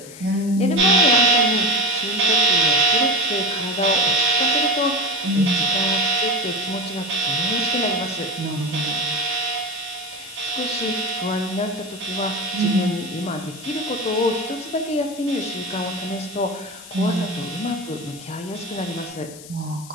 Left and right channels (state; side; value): noise; left; hiss, 17 dB below the sound